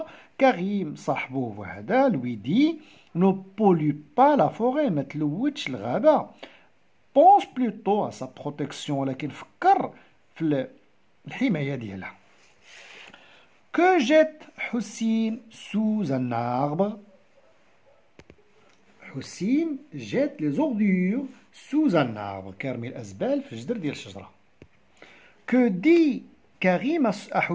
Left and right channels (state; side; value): identical; both; correlation 1.00